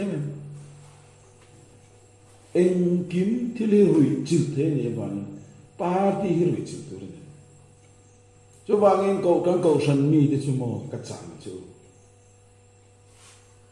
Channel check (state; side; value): identical; both; correlation 1.00